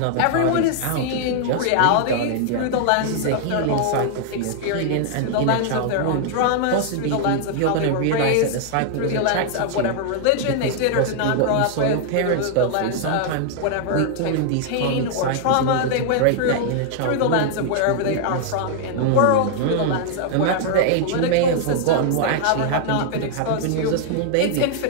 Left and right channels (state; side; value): different; both; correlation -0.01